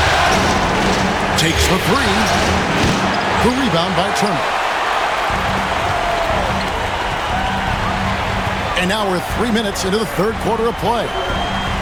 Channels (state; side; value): identical; both; correlation 1.00